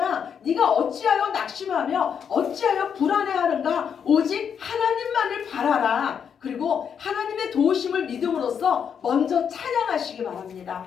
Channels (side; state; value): right; quieter; 7.5 dB